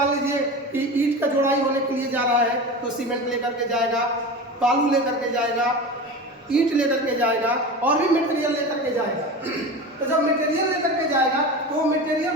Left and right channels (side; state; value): both; normal; correlation 0.29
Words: लीजिए कि ईंट का जोड़ाई होने के लिए जा रहा है तो सीमेंट लेकर के जाएगा, बालू लेकर के जाएगा, ईंट लेकर के जाएगा और भी मटेरियल लेकर के जाएगा। तो जब मटेरियल लेकर के जाएगा तो वो मटेरियल